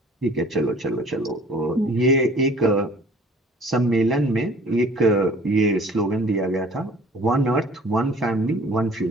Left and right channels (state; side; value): normal; both; correlation 0.50